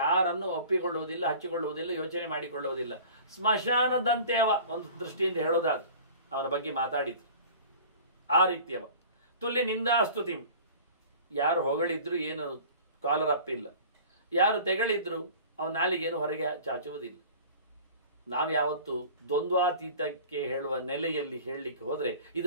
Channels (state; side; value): inverted; both; correlation -0.43